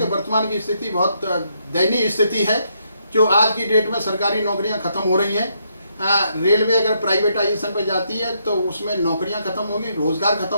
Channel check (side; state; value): both; inverted; correlation -0.76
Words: वर्तमान की स्थिति बहुत दयनीय स्थिति है। जो आज की डेट में सरकारी नौकरियाँ खत्म हो रही हैं, रेलवे अगर प्राइवेटाइजेशन पे जाती है तो उसमें नौकरियां खत्म होगी, रोजगार